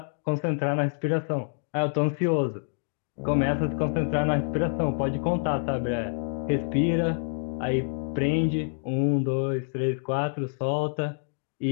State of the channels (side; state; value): right; silent; digital silence